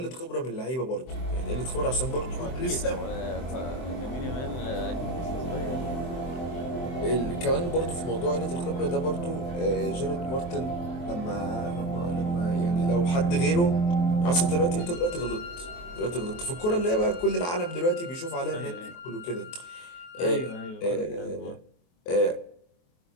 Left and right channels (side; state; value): right; late; 23 ms